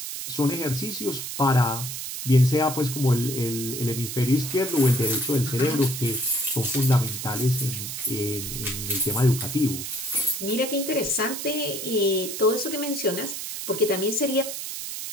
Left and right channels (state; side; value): noise; right; hiss, 6 dB below the sound